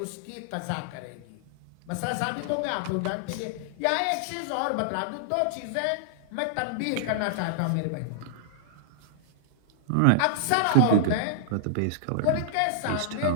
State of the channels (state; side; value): different; both; correlation -0.01